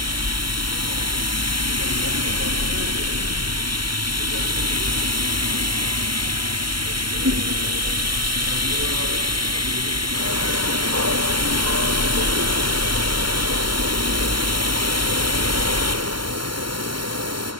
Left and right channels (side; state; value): left; late; 0.73 ms